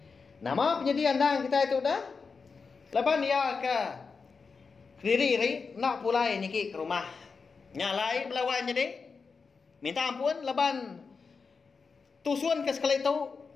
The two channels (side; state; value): right; quieter; 5.0 dB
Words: nama penyediaan dang kita itu dah laban dia ke diri nak pulai niki ke rumah nyalai balawai jadi minta ampun laban tusun ke sekali itu